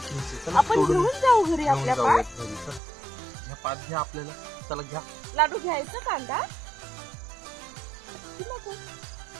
घ्यायची. चला आपण तोडून घेऊन जाऊ घरी घेऊन आपल्या जाऊया पात. घरी. चल. ह्या पात घ्या आपल्याला. चला घ्या. लाडू घ्यायचं कांदा.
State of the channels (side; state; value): left; drops out; at 2.8 s